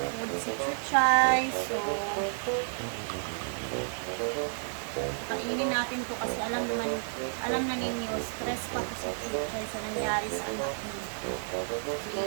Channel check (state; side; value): silent; left; 57 dB below the other